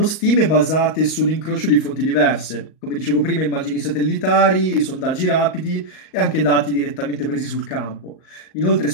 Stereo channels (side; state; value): right; late; 38 ms